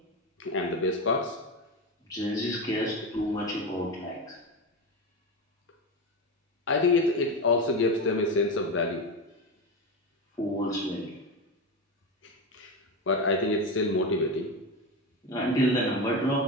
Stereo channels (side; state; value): both; normal; correlation 0.18